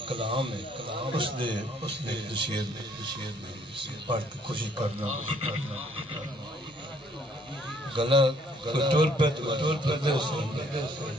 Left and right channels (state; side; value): normal; both; correlation 0.63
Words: اس نے ایک شعر پڑھ کے خوشی کرنا گلا ٹور پہ دے